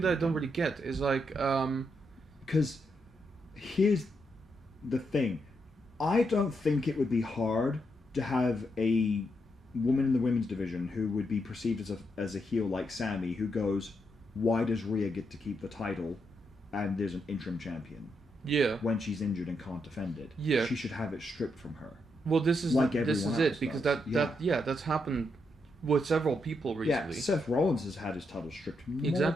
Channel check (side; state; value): both; normal; correlation 0.80